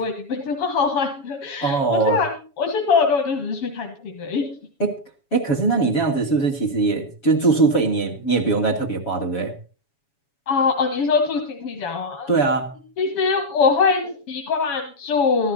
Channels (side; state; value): right; late; 7.2 ms